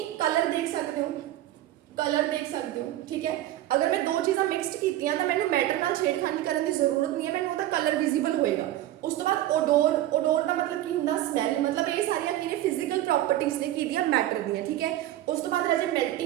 कलर देख सकते हो, कलर देख सकते हो। ठीक है, अगर मैं 2 चीज़ां मिक्सड कीतियां तो मैनूं मैटर नाल छेड़खानी करन दी जरूरत नहीं है, मैनूं उहदा कलर विजिबल होएगा। उस तो बाद ओडोर, ओडोर का मतलब की हुंदा? स्मैल। मतलब ये सारियां की ने? फिजिकल प्रॉपर्टीज ने की दियां मैटर दियां। ठीक है, उस तो बाद राजे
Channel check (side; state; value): left; quieter; 14.1 dB